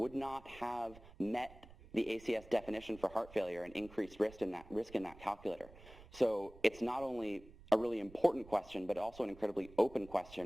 not have met the ACS definition for heart failure and increased risk in that calculator. So it's not only a really important question, but also an incredibly open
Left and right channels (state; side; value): noise; right; rumble, 20 dB below the sound